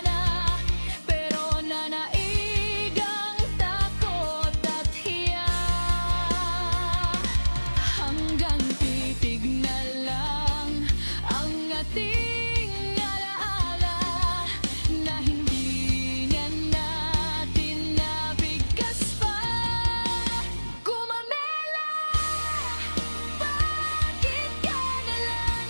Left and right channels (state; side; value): inverted; both; correlation -1.00